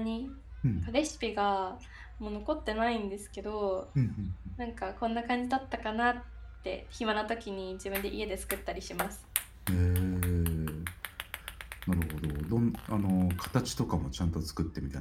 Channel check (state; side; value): identical; both; correlation 1.00